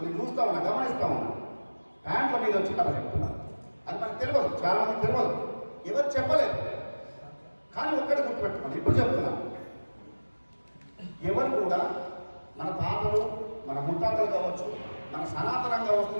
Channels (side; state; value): both; inverted; correlation -1.00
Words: చూస్తా ఉన్నా, గమనిస్తా ఉన్నా, ప్యాంట్ల మీద వచ్చి కథ చెప్తున్నారు. అది మనకు తెలియదు, చాలా మందికి తెలియదు, ఎవరు చెప్పలేదు. కానీ ఒక్కటి గుర్తుపెట్టుకోండి, ఇప్పుడు చెప్తున్నాను, ఎవరు కూడా మన తాతలు, మన ముత్తాతలు కావచ్చు, మన సనాతనంగా